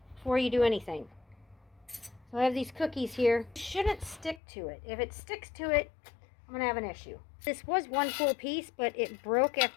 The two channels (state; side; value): drops out; right; at 4.4 s